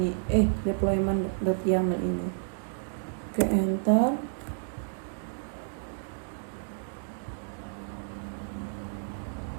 deployment.yaml ini. Oke, enter.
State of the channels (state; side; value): silent; left; digital silence